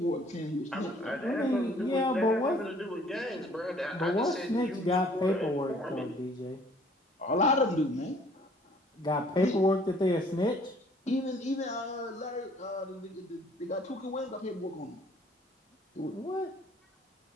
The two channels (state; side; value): normal; both; correlation 0.58